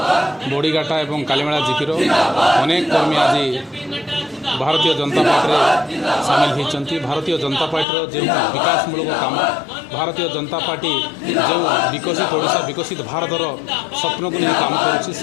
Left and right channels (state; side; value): drops out; right; at 7.9 s